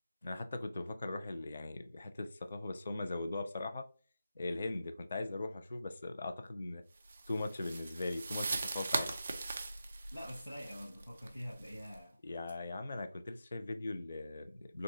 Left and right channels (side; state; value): both; inverted; correlation -0.89